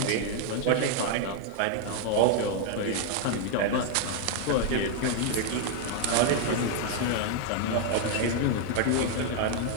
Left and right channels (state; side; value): different; both; correlation 0.00